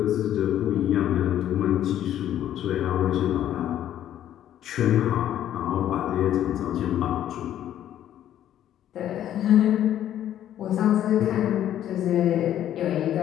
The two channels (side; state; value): right; quieter; 11.4 dB